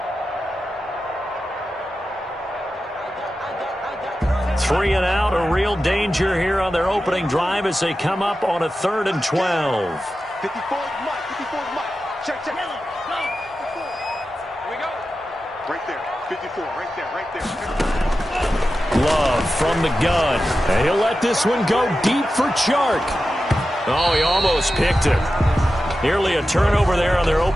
Three and out, a real danger here on their opening drive as they come up on a 3rd and 12. 54 Mike. Check. Here we go. Right there. 54, right there. Love from the gun. And he'll let this one go deep for Chark. Oh, he almost picked it. Nearly a turnover there on their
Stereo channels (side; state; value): both; normal; correlation 0.92